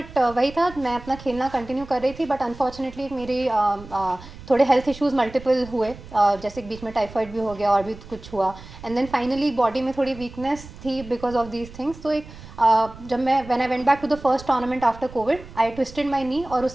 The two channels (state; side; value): noise; right; rumble, 17 dB below the sound